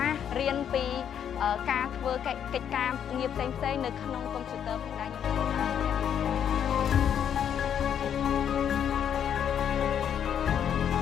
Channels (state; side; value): quieter; right; 8.8 dB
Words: ាររៀនពីការធ្វើកិច្ចការងារផ្សេងៗនៅក្នុងកុំព្យូទ័រផងដែរ